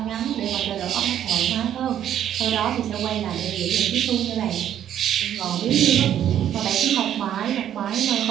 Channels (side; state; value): left; quieter; 10.5 dB